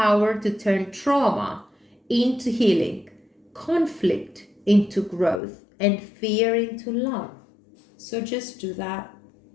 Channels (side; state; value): right; drops out; at 5.4 s